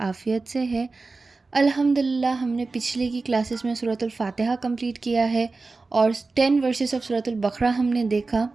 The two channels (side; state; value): left; quieter; 3.8 dB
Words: سے ہے۔ الحمدللہ ہم نے پچھلے کی کلاسز میں سورۃ الفاتحہ کمپلیٹ کیا ہے اور 10 ورسز آف سورۃ البقرہ ہم نے دیکھا۔